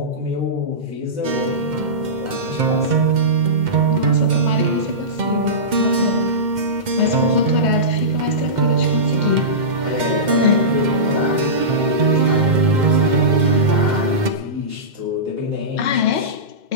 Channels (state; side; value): late; left; 2.1 ms